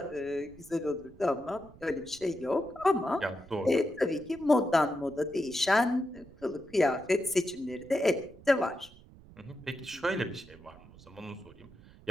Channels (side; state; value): right; noise; rumble, 22 dB below the sound